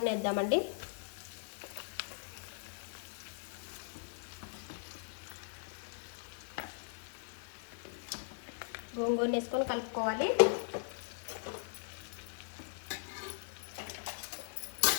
వేద్దామండి. గోంగూరను వేసుకొని కలుపుకోవాలి.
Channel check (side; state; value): right; silent; digital silence